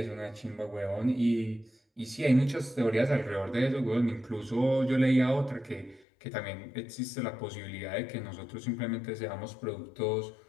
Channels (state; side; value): drops out; right; at 6.1 s